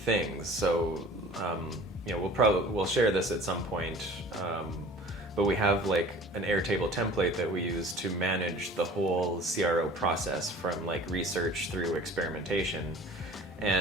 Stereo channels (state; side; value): normal; both; correlation 0.45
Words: So we'll share this at some point, but we have an Airtable template that we use to manage the whole CRO process from research through experimentation.